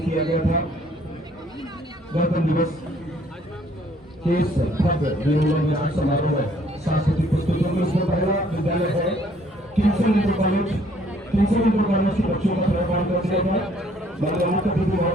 किया गया था गणतंत्र दिवस के इस भव्य विजयोन्मुख समारोह में सांस्कृतिक प्रस्तुतियों में। इसमें पहला विद्यालय है किंगसन इंटर कॉलेज के बच्चों का प्रभाव कर दिया था। माननीय मुख्य अतिथि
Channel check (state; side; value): normal; both; correlation 0.62